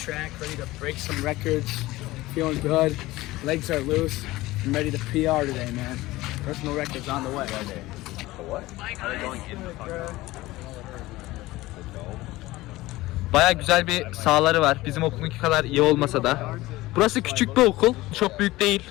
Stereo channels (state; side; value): quieter; right; 18.5 dB